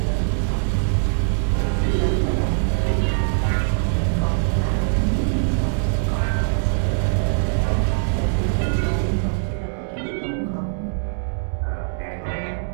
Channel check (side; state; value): left; silent; digital silence